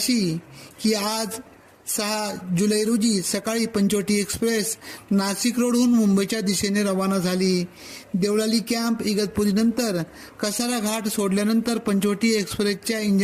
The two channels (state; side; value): identical; both; correlation 1.00